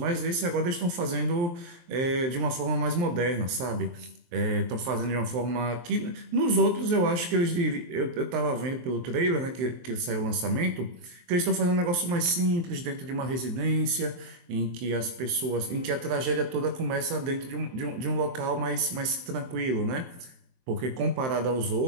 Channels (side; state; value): left; late; 23 ms